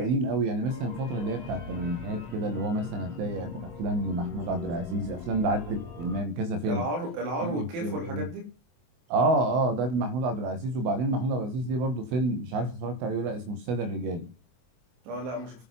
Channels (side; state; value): left; late; 23 ms